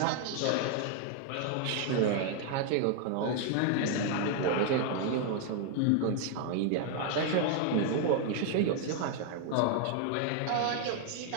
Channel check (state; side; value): different; both; correlation 0.00